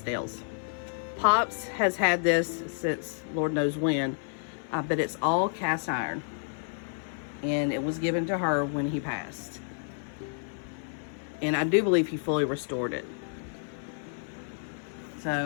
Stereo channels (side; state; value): right; silent; digital silence